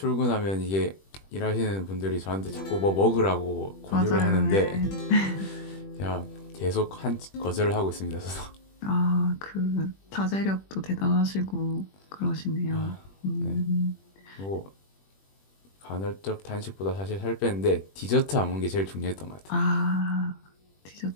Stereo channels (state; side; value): late; right; 21 ms